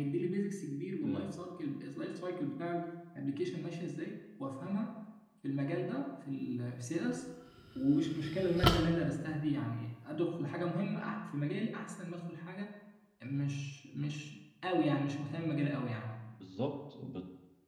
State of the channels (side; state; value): both; identical; correlation 1.00